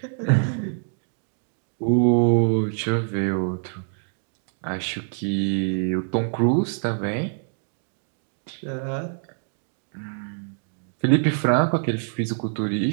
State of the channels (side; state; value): left; silent; digital silence